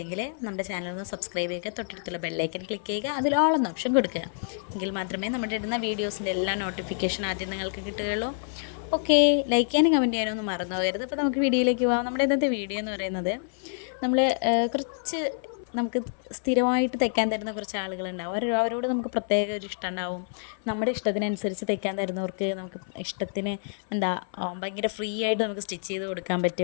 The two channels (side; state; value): right; silent; 58 dB below the other